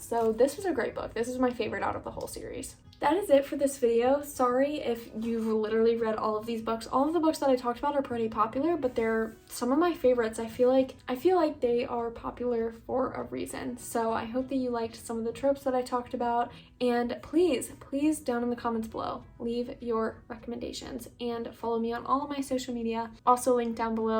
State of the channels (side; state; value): both; identical; correlation 1.00